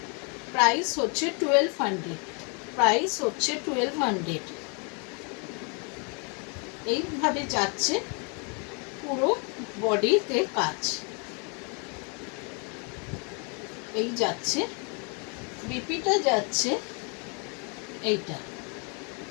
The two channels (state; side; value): quieter; right; 35.7 dB